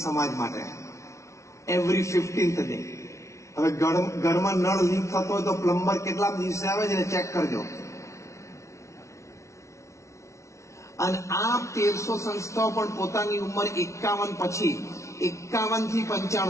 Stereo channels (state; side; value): late; right; 0.14 ms